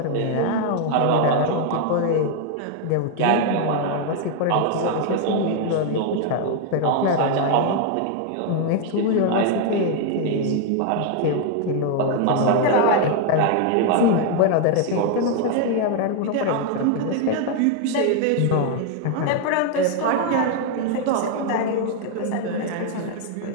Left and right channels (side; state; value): both; different; correlation 0.01